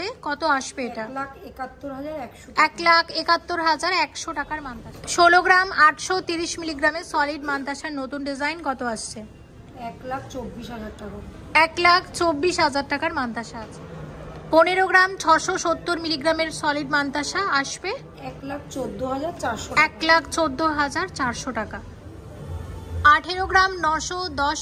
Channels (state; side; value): identical; both; correlation 1.00